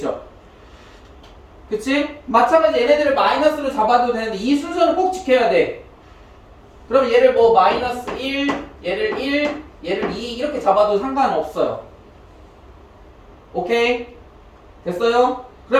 그치? 마찬가지 얘네들을 마이너스로 잡아도 되는데 이 순서는 꼭 지켜야 돼. 그럼 얘를 뭐 마이너스 1, 얘를 1, 얘를 2 이렇게 잡아도 상관없어요. 오케이? 됐어요?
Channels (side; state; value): both; identical; correlation 1.00